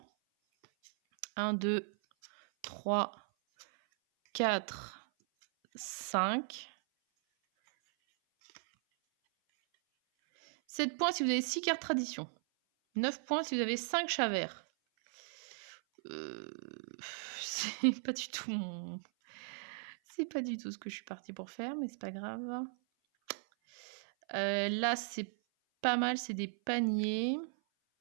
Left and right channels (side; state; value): left; silent; 53 dB below the other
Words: 1, 2, 3, 4, 5. 7 points si vous avez 6 cartes tradition. 9 points si vous avez 5 chats verts. C'est pas du tout mon... C'est pas du tout ce que je suis partie pour faire, mais c'est pas grave. Là, c'est pas mal, c'est des paniers.